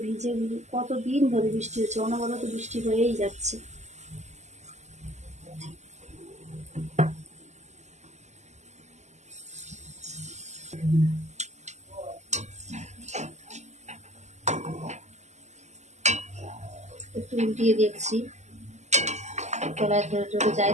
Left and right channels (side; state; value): left; late; 0.33 ms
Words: ভিজে কতদিন ধরে বৃষ্টি হচ্ছে, অনবরত বৃষ্টি হয়েই যাচ্ছে। একটু উল্টিয়ে দেখছি, তলায় ধরে ধরে যায়